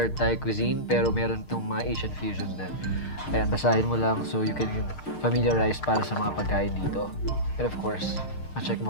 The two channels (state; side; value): late; right; 6.6 ms